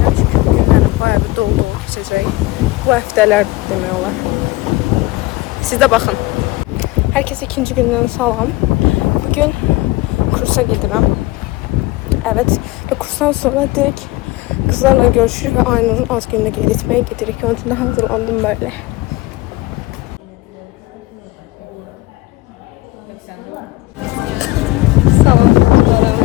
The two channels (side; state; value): right; quieter; 20.2 dB